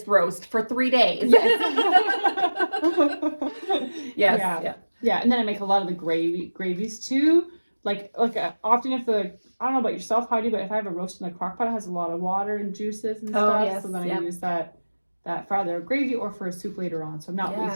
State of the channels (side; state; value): both; inverted; correlation -1.00